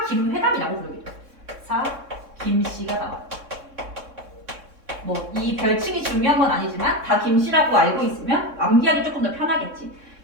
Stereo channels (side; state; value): left; late; 3.6 ms